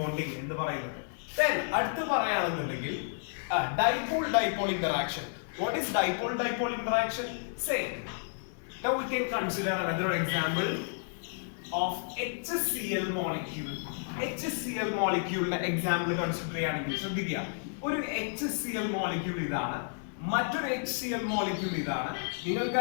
എന്ന് പറയുന്നത്. Then അടുത്ത് പറയുകയാണെന്നുണ്ടെങ്കിൽ dipole-dipole interaction. What is dipole-dipole interaction? Say, now we can consider another example of HCl molecule. HCl molecule example consider ചെയ്യാണെങ്കിൽ ശ്രദ്ധിക്കുക, ഒരു HCl molecule ഇതാണ്, മറ്റൊരു HCl molecule ഇതാണ്.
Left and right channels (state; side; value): silent; right; digital silence